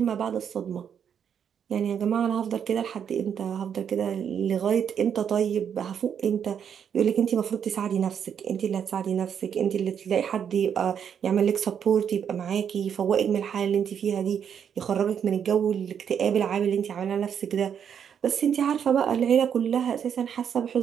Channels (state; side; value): quieter; left; 8.1 dB